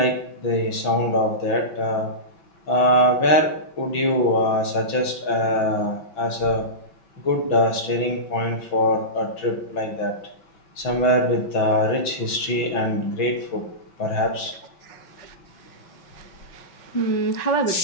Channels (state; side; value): late; right; 6.0 ms